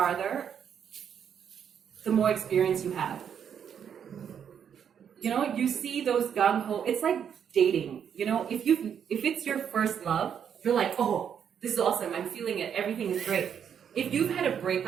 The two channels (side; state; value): left; quieter; 8.2 dB